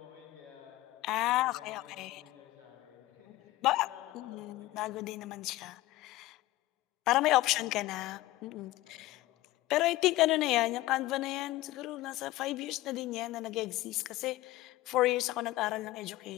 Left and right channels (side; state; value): right; quieter; 17.5 dB